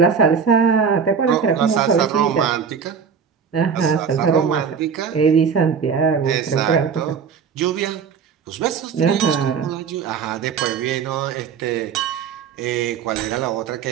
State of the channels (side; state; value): left; quieter; 6.4 dB